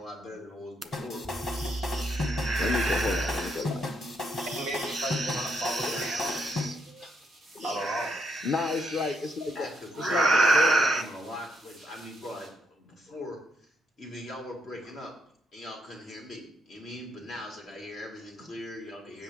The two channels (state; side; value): normal; both; correlation 0.76